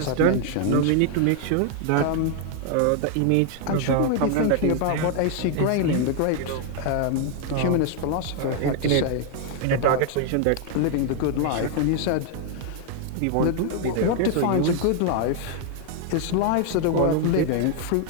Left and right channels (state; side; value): different; both; correlation 0.00